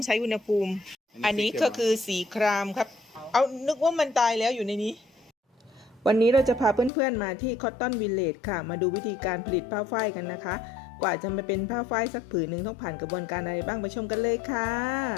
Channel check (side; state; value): right; drops out; at 6.9 s